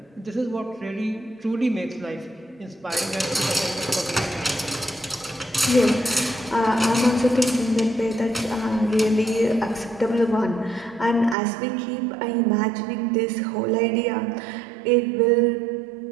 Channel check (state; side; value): drops out; left; at 11.4 s